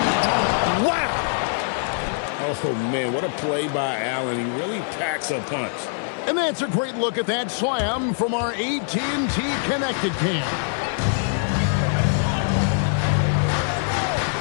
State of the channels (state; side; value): silent; right; digital silence